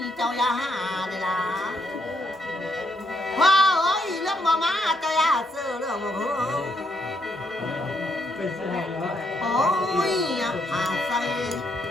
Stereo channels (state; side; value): normal; both; correlation 0.75